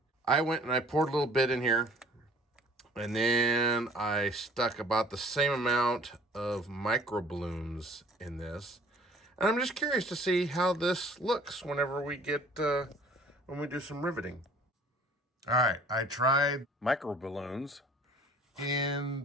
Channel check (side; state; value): both; normal; correlation 0.52